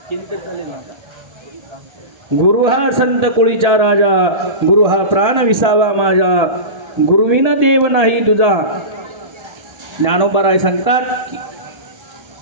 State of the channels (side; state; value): left; late; 1.3 ms